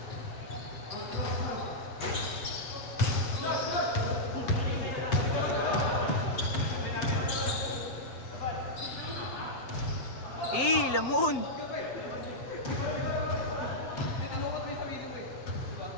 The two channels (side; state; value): right; late; 7.8 ms